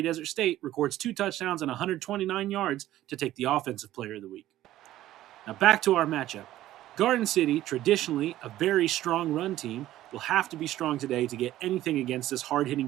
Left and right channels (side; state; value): left; quieter; 14.2 dB